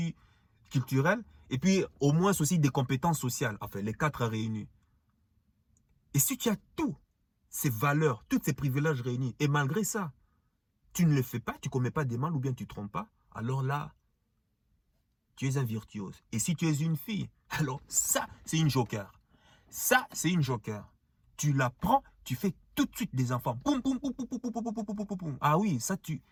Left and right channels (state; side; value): identical; both; correlation 1.00